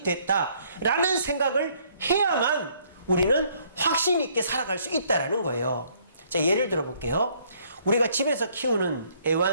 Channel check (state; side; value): inverted; both; correlation -0.65